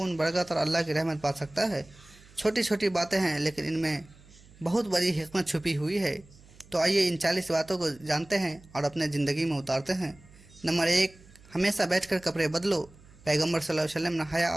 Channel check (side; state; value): right; noise; hum, 24 dB below the sound